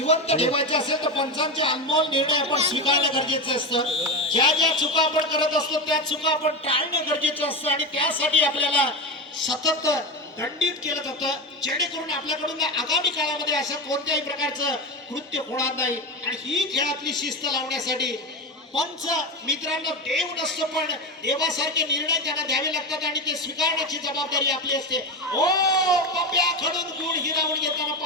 ठेवायचा असेल तर पंचांचे अनमोल निर्णय आपण स्वीकारणं गरजेचं असतं. ज्या ज्या चुका आपण करत असतो त्या चुका आपण टाळणं गरजेचं असतं आणि त्यासाठी आपल्याला सतत दंडित केलं जातं, जेणेकरून आपल्याकडून आगामी काळामध्ये असं कोणत्याही प्रकारचं कृत्य होणार नाही. आणि ही खेळातली शिस्त लावण्यासाठी पंच मित्रांनो देव नसतो, पण देवासारखे निर्णय त्यांना द्यावे लागतात आणि ते स्वीकारण्याची जबाबदारी आपली असते. ओ पप्प्याकडून गुण हिरावून घेताना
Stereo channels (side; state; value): both; normal; correlation 0.18